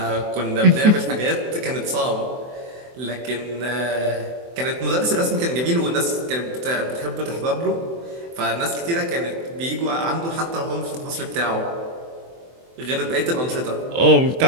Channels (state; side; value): late; left; 24 ms